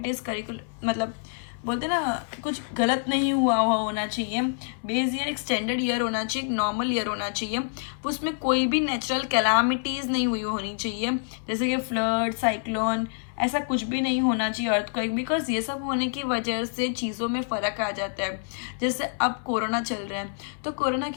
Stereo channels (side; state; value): right; silent; 60 dB below the other